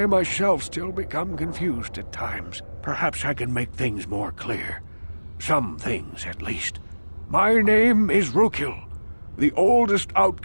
myself still become confused at times. Perhaps I can make things more clear. Some things, at least. My name is Rukil, the oldest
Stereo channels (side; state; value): both; inverted; correlation -1.00